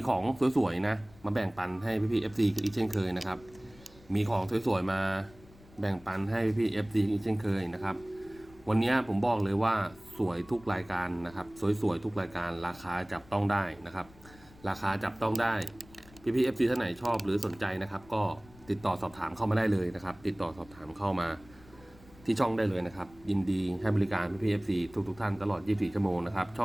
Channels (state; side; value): noise; left; rumble, 24 dB below the sound